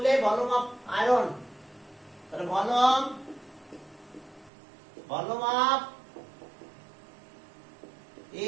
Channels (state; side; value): drops out; left; at 4.5 s